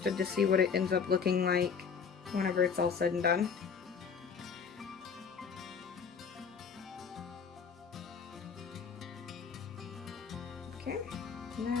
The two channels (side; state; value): right; quieter; 6.2 dB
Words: to see what it ends up looking like whenever it's all said and done. Okay, and